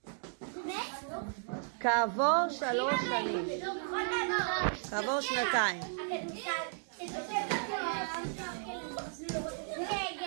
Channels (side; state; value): left; silent; digital silence